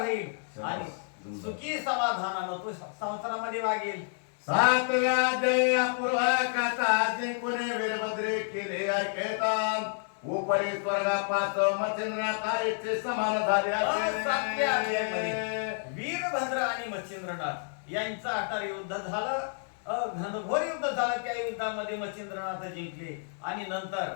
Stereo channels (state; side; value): silent; right; digital silence